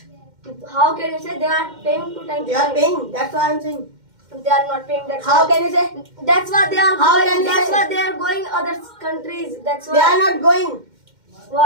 How can you say they are paying to time? They are paying. That's what I'm saying. They are not paying. That's How why. can you say? That's why they are How going. can you That's say? why they are going other countries. That's They are why. not going.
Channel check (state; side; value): late; left; 2.1 ms